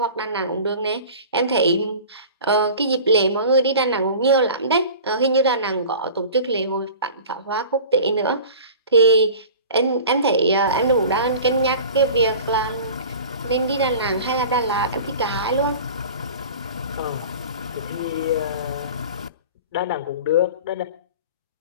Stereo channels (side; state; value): both; inverted; correlation -0.39